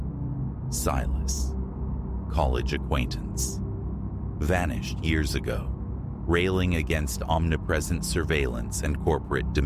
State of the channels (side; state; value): both; identical; correlation 1.00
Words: Silas. College acquaintance. Vanished years ago, railing against omnipresent surveillance and corporate